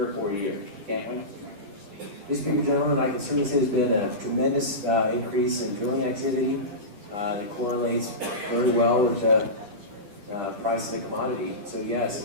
or 4 years, can't we? Mr. Speaker, gentlemen, I can certainly say there's been a tremendous increase in drilling activity that correlates very well with the price of the commodity. So yes,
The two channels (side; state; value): left; late; 10 ms